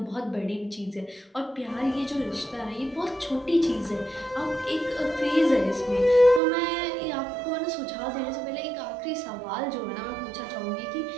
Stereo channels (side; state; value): left; drops out; at 6.4 s